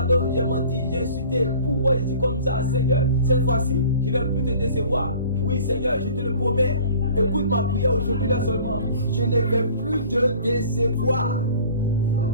j'ai menti, j'ai insulté. Pourquoi je suis comme ça, Seigneur? Cette fois-ci, je ne vais plus te décevoir. Oui, Seigneur, je te le promets. Écoute ma prière aujourd'hui là seulement. Je ne vais plus te décevoir.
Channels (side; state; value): both; inverted; correlation -0.47